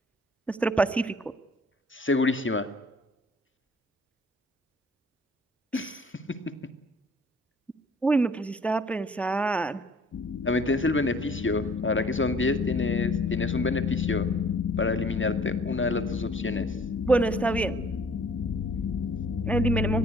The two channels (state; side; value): normal; both; correlation 0.55